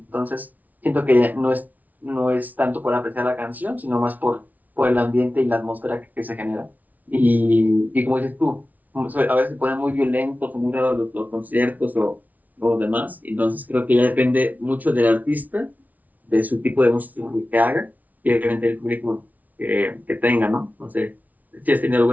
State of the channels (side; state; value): left; late; 0.075 ms